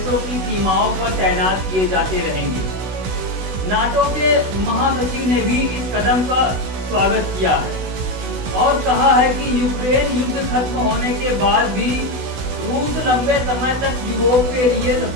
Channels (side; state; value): left; late; 16 ms